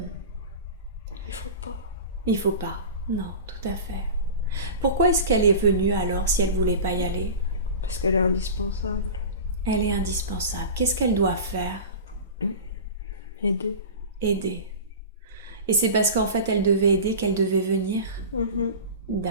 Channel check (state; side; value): inverted; both; correlation -0.32